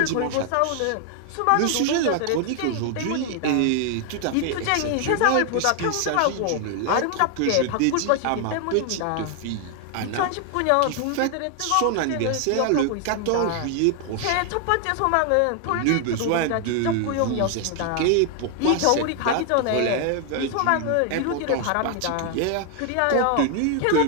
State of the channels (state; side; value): different; both; correlation 0.00